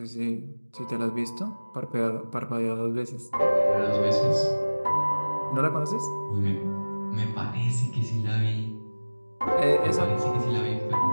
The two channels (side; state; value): both; inverted; correlation -1.00